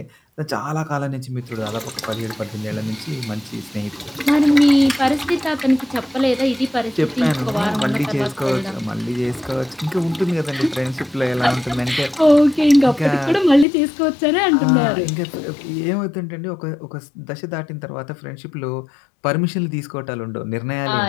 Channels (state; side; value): drops out; right; at 13.7 s